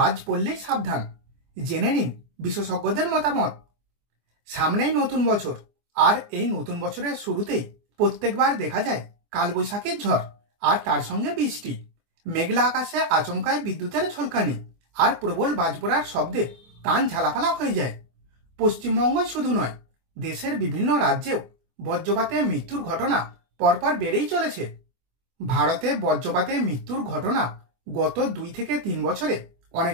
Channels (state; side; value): late; left; 24 ms